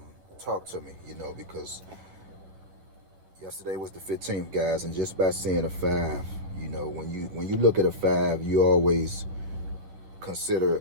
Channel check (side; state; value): left; late; 11 ms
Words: talk to me, because yesterday was the 15th, guys, and just by seeing a five, when you look at a five, you always consider